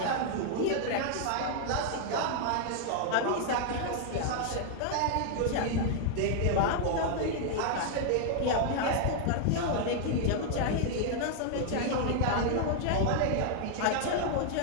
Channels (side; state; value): both; different; correlation 0.00